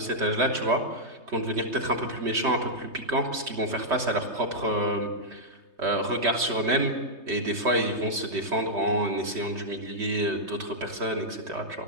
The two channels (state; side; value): late; left; 3.2 ms